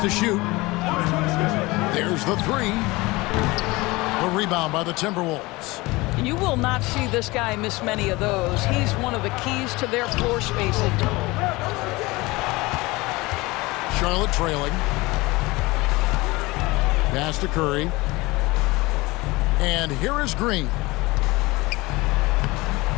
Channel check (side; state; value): right; quieter; 22.1 dB